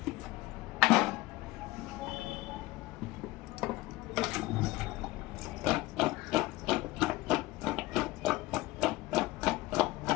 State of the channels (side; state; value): right; quieter; 19.2 dB